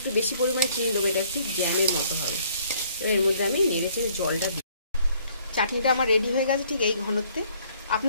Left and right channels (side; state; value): both; inverted; correlation -0.62